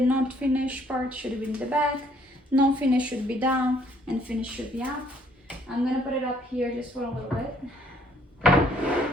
finished part should be in the back. Non-finish should be down and finish should be up. I'm gonna put it up here just for a little bit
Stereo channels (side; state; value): both; normal; correlation 0.64